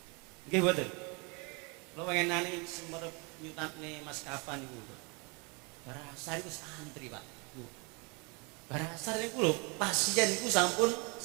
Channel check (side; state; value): left; quieter; 31.2 dB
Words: Nggih mboten? Lo pengenane semerep nyutatne Mas Kafan niku. Barasar itu antri Pak. Barasar niku lho pasien niku